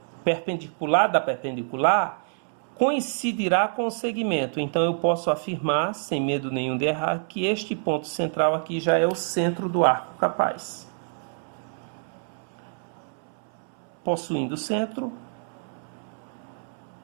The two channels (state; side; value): silent; left; 60 dB below the other